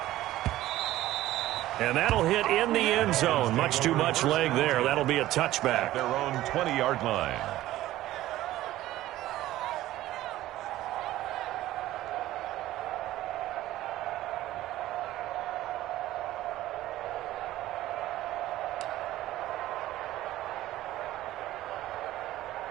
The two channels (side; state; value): left; quieter; 15.1 dB